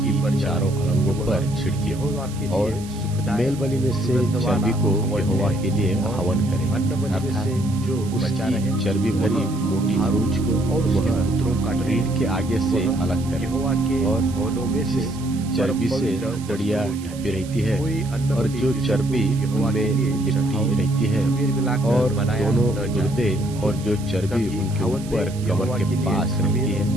चारों अलंगों पर छिड़के और मेल बलि में से चर्बी को यहोवा के लिए हवन करे, अर्थात जो उसकी चर्बी भरी मोटी आरूज को और उसके पुत्रों का रीढ़ के आगे से अलग करे। और होनों में से चर्बी से हथड़ियां ढपी रहती है और जो चर्बी उनमें लिपटी रहती है और दोनों गुर्दे और जो चर्बी उनके ऊपर कमर के पास रहती है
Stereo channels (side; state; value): right; noise; hiss, 18 dB below the sound